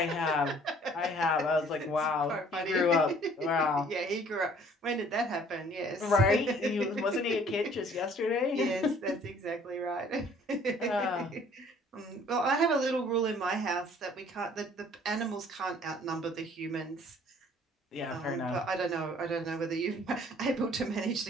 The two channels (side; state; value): both; normal; correlation 0.56